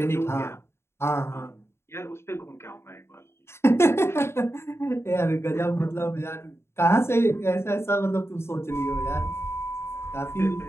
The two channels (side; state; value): right; late; 0.12 ms